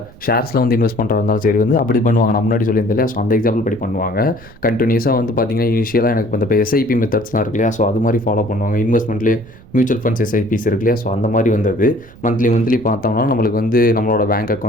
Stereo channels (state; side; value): noise; right; rumble, 23 dB below the sound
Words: ஷேர்ஸில் வந்து இன்வெஸ்ட் பண்ணுறதா இருந்தாலும் சரி வந்து அப்படி பண்ணுவாங்க. நான் முன்னாடி சொல்லியிருந்தேன் இல்லையா, ஸோ அந்த எக்ஸாம்பிள் படி பண்ணுவாங்க. கண்டினியூஸாக வந்து பார்த்தீங்கன்னா இனிஷியலாக எனக்கு இப்போ SIP மெத்தட்ஸ்லாம் இருக்கு இல்லையா, ஸோ அது மாதிரி ஃபாலோ பண்ணுவாங்க. இன்வெஸ்ட்மெண்ட்லேயே மியூச்சுவல் ஃபண்ட்ஸ் SIPs இருக்கு இல்லையா, ஸோ அந்த மாதிரி வந்தது. மந்த்லி பார்த்தோம்னா நம்மளுக்கு வந்து நம்மளோட பேங்க்